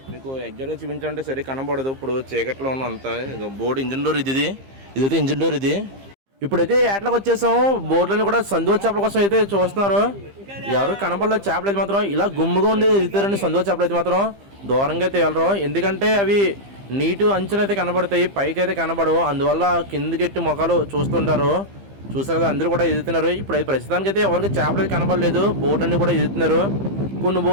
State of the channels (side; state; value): left; late; 15 ms